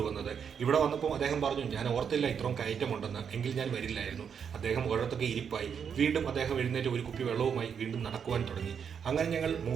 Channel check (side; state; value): left; quieter; 7.2 dB